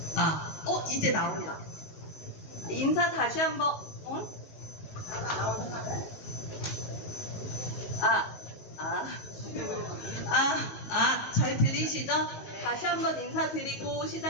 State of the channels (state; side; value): late; right; 19 ms